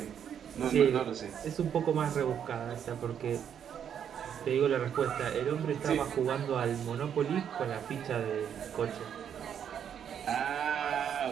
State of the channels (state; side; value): quieter; left; 8.6 dB